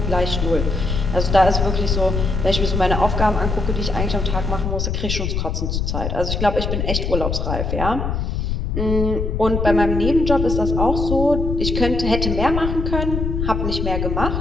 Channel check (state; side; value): noise; left; rumble, 1 dB below the sound